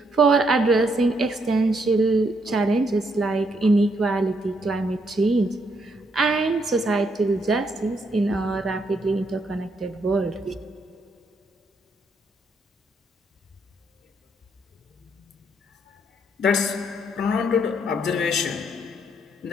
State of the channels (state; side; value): normal; both; correlation 0.74